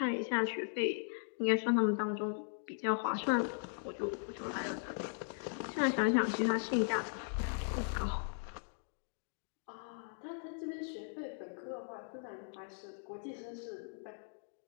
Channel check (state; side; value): silent; right; digital silence